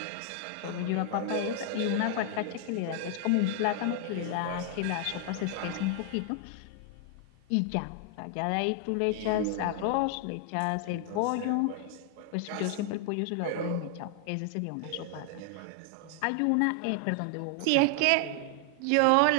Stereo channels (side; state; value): both; different; correlation 0.00